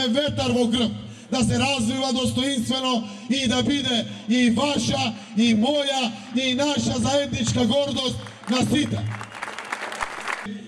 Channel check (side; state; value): both; identical; correlation 1.00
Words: ветар во грб, да се развива достоинствено и да биде и ваша, и моја, и наша заедничка гордост на сите.